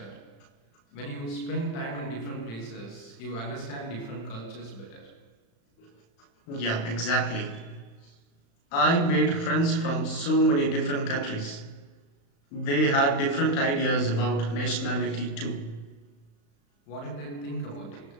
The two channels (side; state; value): right; late; 35 ms